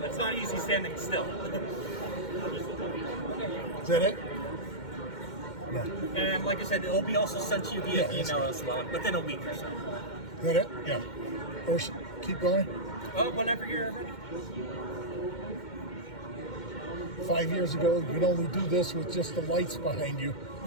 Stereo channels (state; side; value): late; right; 2.1 ms